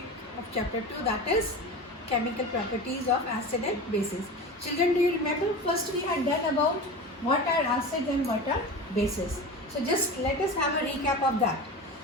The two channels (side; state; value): both; normal; correlation 0.30